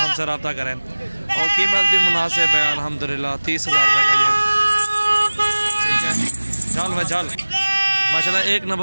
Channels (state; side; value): inverted; both; correlation -1.00